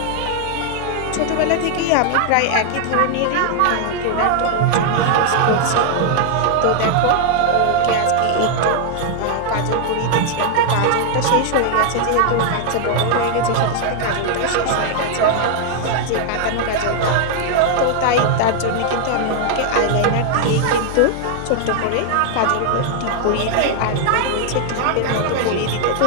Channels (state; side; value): different; both; correlation 0.00